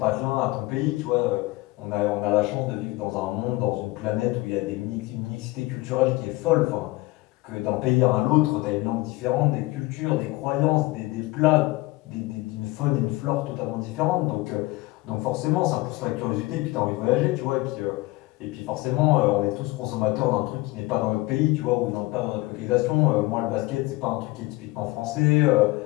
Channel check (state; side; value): quieter; right; 20.9 dB